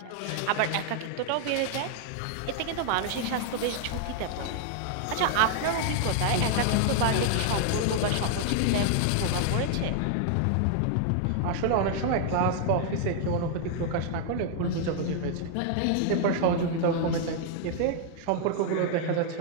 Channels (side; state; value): both; different; correlation 0.00